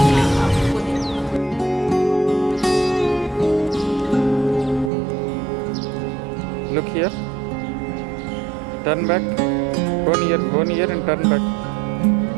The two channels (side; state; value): left; drops out; at 4.9 s